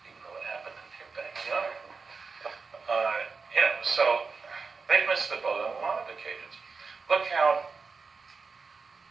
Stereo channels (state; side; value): quieter; left; 4.7 dB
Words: even though it happened in their backyard. So they've missed the boat on a lot of occasions. Look how,